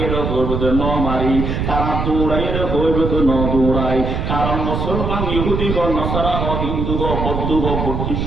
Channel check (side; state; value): right; noise; rumble, 2 dB below the sound